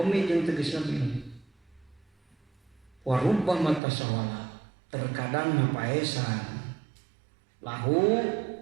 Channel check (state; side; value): drops out; left; at 3.8 s